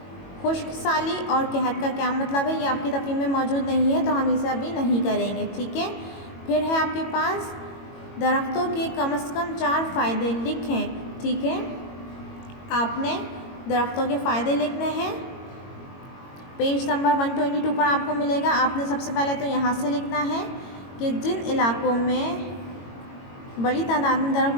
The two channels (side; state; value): right; late; 22 ms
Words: खुश्क साली और कहत का क्या मतलब है? ये आपकी तफहीम में मौजूद नहीं है तो हम इसे अभी नहीं करेंगे। ठीक है, फिर है आपके पास दरख्तों के कम से कम 4 फ़ायदे लिखें। ठीक है, आपने दरख्तों के फ़ायदे लिखने हैं, पेज नंबर 122 पर आपको मिलेगा। आपने सबसे पहले तो यहाँ से लिखना है कि जिन इलाकों में बड़ी तादाद में दरख्त